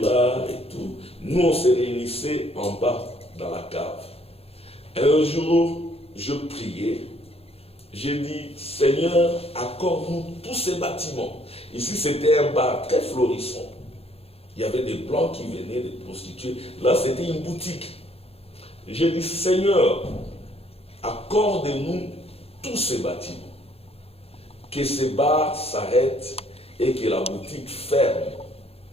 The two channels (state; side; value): late; right; 0.29 ms